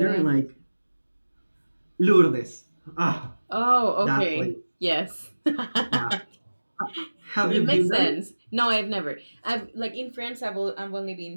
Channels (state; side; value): inverted; both; correlation -1.00